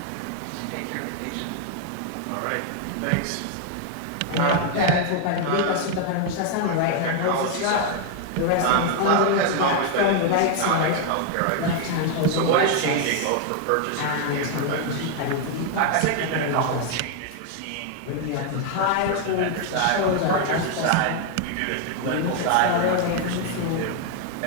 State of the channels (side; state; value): both; different; correlation 0.00